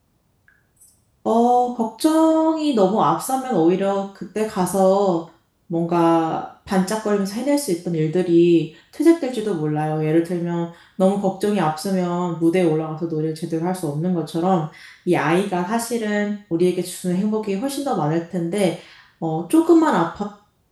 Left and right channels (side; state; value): both; identical; correlation 1.00